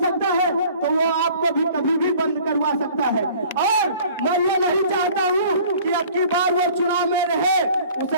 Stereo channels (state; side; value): inverted; both; correlation -0.50